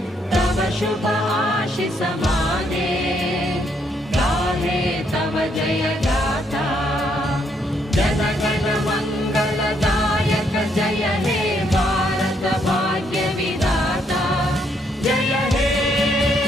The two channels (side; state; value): both; normal; correlation 0.73